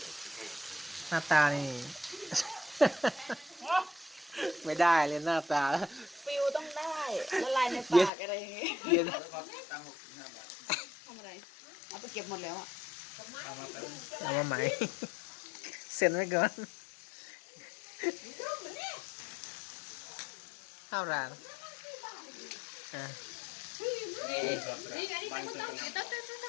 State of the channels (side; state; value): right; drops out; at 8.1 s